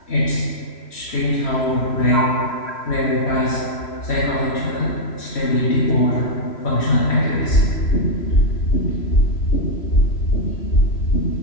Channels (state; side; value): late; right; 3.1 ms